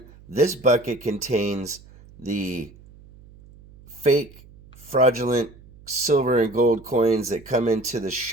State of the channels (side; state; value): right; noise; hum, 23 dB below the sound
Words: this bucket contains the fake, fraudulent silver and gold coins that come into the